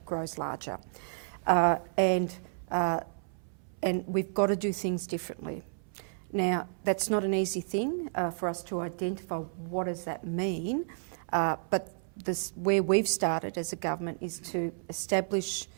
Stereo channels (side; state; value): left; silent; 57 dB below the other